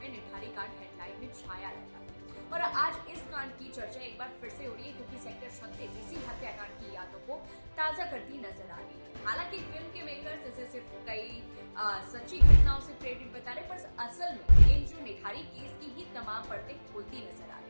निठारी कांड हेडलाइन में छाया रहता है। और आज इस कांड की चर्चा एक बार फिर से हो रही है क्योंकि सेक्टर 36 इसी हत्याकांड की यादों को ताजा करती नजर आ रही है। हालांकि फिल्म के मेकर्स इसे सिर्फ कई सच्ची घटनाओं से प्रेरित बता रहे, पर असल में ये जो निठारी केस की ही तमाम परतें खुलती नजर आ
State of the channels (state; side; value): inverted; both; correlation -1.00